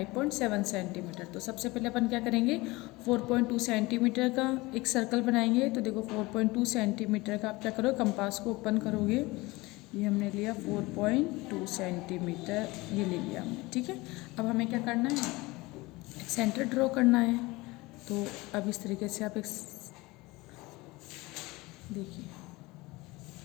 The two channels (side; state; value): right; quieter; 21.9 dB